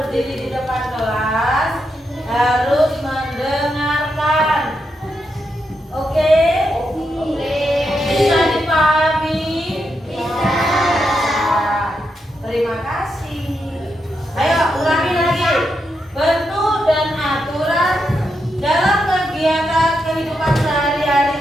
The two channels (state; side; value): normal; both; correlation 0.83